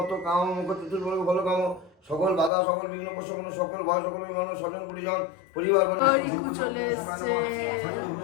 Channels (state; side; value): drops out; right; at 2.5 s